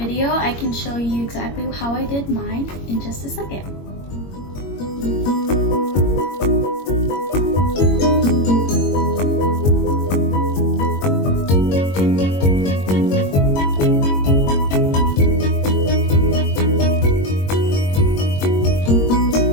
I can show you exactly how I did mine in just a second.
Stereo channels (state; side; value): late; right; 21 ms